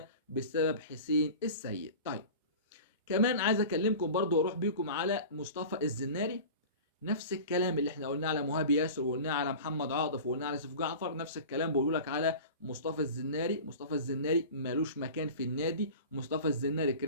بسبب حسين السيد. طيب كمان عايز اكلمكم برضو واروح بيكم على مصطفى الزناري. نفس الكلام اللي احنا قلناه على مهاب ياسر وقلناه على محمد عاطف وقلناه على سيف جعفر، نفس الكلام بقول لك على مصطفى الزناري. مصطفى الزناري مالوش مكان في النادي. مصطفى الزناري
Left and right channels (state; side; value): inverted; both; correlation -0.36